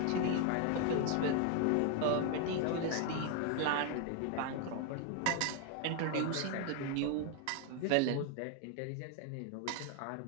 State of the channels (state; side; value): different; both; correlation 0.01